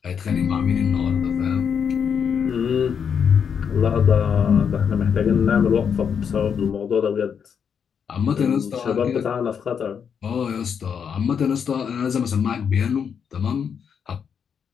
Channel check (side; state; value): right; quieter; 7.2 dB